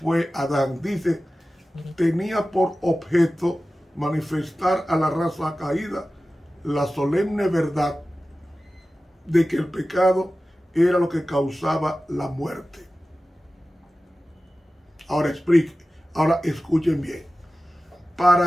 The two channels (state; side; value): normal; both; correlation 0.95